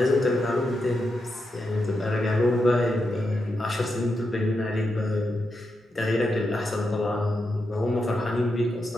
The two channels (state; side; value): normal; both; correlation 0.86